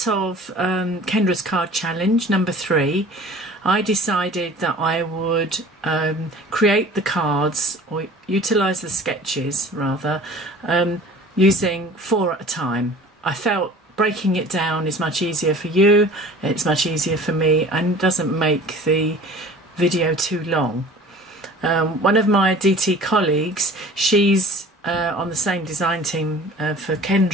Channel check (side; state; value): both; normal; correlation 0.45